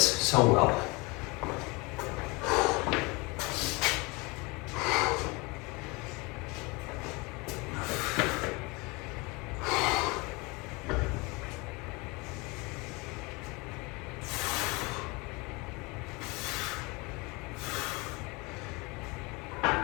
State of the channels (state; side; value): quieter; right; 26.3 dB